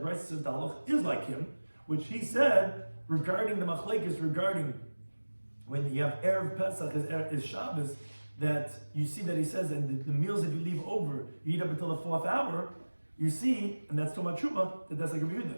Bryce says the halach is like him, which he said regarding the machlekes, regarding when you have Erev Pesach is Shabbos, that you see that he says, and the meals that you leave over, you eat up until the 4th hour, you see, and that's Toma Truma, that's like a Yehuda.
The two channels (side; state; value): both; inverted; correlation -1.00